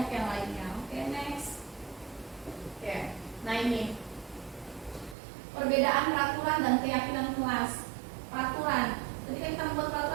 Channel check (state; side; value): drops out; left; at 5.2 s